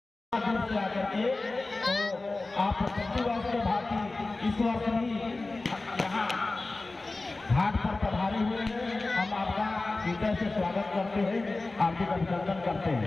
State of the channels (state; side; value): quieter; right; 3.3 dB